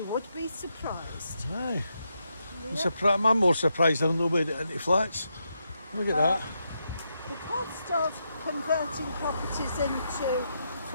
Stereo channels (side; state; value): both; inverted; correlation -0.82